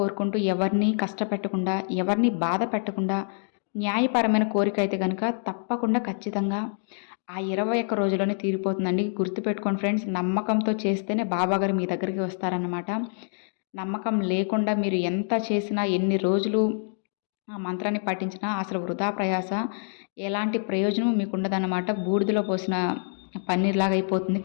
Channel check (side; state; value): right; silent; digital silence